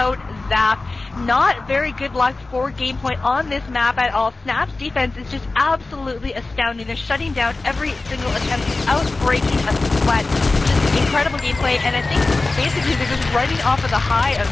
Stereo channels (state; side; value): quieter; right; 3.3 dB